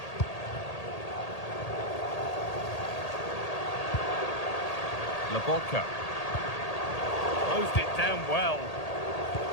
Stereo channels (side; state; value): right; late; 1.8 ms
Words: Lobotka. Closed it down well.